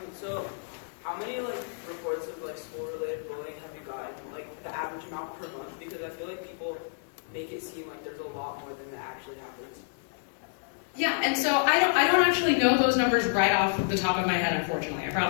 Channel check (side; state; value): right; silent; digital silence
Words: So how many reports of school-related bullying have you gotten, the average amount per month? Because I feel like people make it seem like there's a lot more than that actually happens. Yeah, and so I don't actually know those numbers right off the top of my head, unfortunately. I